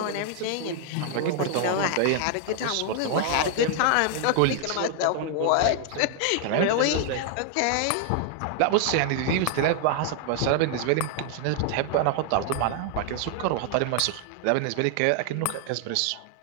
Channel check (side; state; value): both; different; correlation 0.00